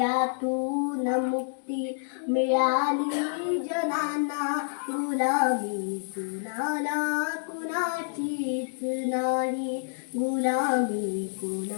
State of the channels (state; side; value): silent; right; digital silence